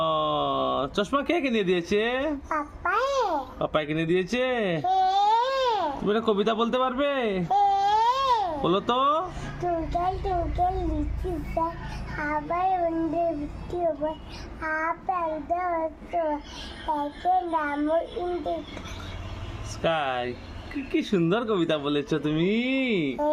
চশমা কে কিনে দিয়েছে? পাপাই কিনে দিয়েছে। তুমি একটা কবিতা বলতে পারবে? বলো তো। টুঙ্কেল টুঙ্কেল লিচু গাছ আবার উন্ডে বৃষ্টি হবে আপেল একে নাম ইন্ডে স্কাই। কি সুন্দর কবিতা বলেছো তুমি।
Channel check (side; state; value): both; identical; correlation 1.00